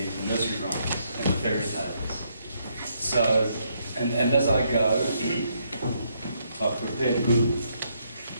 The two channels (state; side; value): inverted; both; correlation -0.74